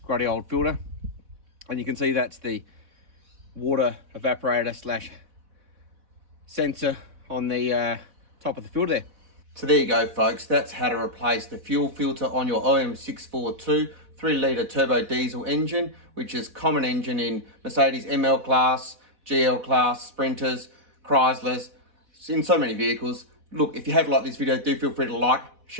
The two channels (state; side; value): late; left; 4.1 ms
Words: grotty old filter. And you can see that's the water evaporator slash sensor on the top of the filter there. So there you go, folks. That's how to replace the fuel filter on your OM642 3-litre turbo diesel engine, which is common engine in Mercedes ML Class, GL Class, Sprinters, Chryslers, in so many vehicles. Look, if you have liked this video, do feel free to like,